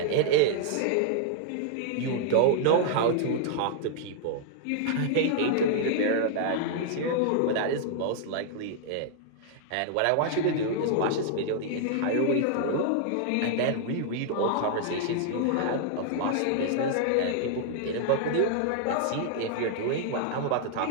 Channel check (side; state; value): both; different; correlation -0.01